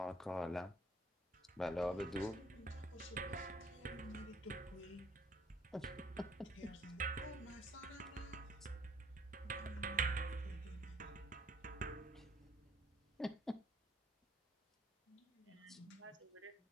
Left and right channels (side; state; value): both; normal; correlation 0.62